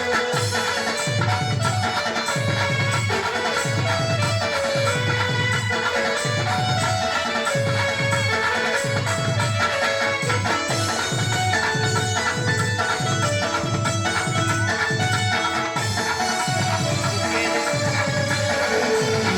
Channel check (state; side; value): identical; both; correlation 1.00